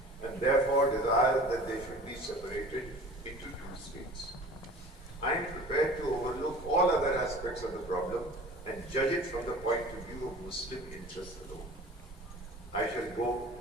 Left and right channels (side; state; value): both; normal; correlation 0.43